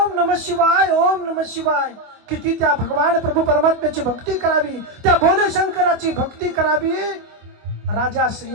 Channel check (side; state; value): left; late; 25 ms